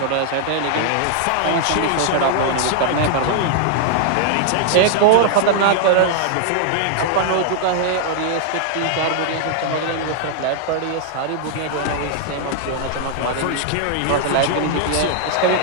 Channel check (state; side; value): different; both; correlation -0.01